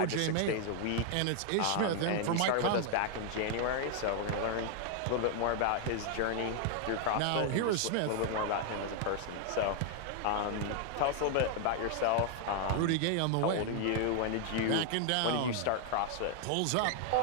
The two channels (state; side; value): different; both; correlation 0.00